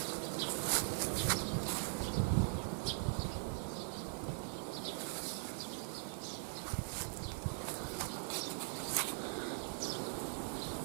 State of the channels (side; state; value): left; silent; digital silence